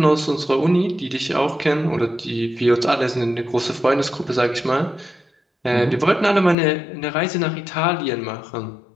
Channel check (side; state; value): right; drops out; at 6.6 s